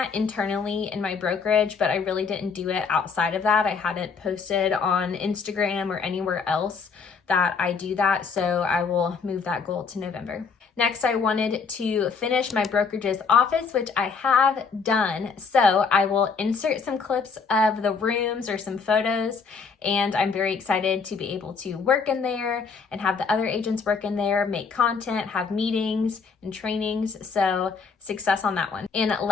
internally in my brokerage, but I really didn't do it outside of that. I hadn't posted on Instagram or anywhere else that I do that, so I will move that goal to November. Next, I wanted to finish my brokerage's office, which I have done. So I will insert some clips of the rooms or some photos and I'm very excited to be able to work in there and have the other agents work in there, make content, have meetings and trainings. So success on that one. And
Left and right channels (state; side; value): quieter; right; 5.4 dB